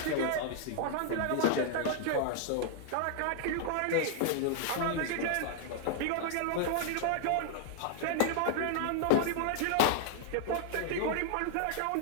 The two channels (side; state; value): both; different; correlation -0.01